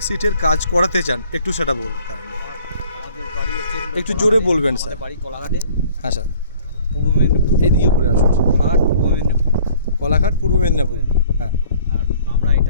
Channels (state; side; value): inverted; both; correlation -0.54